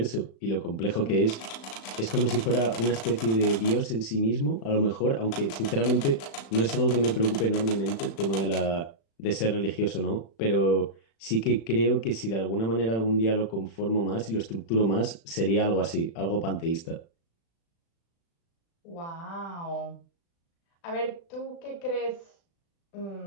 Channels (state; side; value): late; right; 36 ms